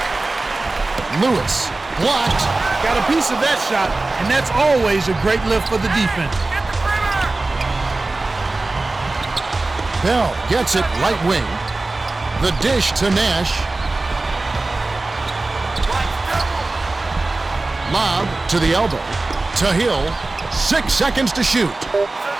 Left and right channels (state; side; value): quieter; left; 3.2 dB